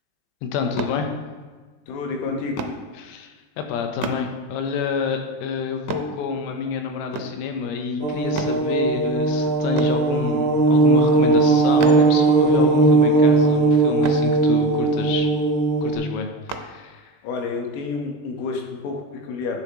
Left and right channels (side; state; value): right; late; 21 ms